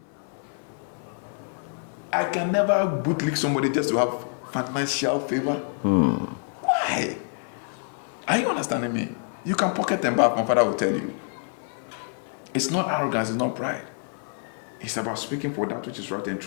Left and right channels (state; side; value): silent; right; 61 dB below the other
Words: I can never bootlick somebody just to have financial favor. Why? Are you understanding me? You can pocket and bath, my father will tell you. It's not arrogance, it's not pride. It's about speaking for that which is right and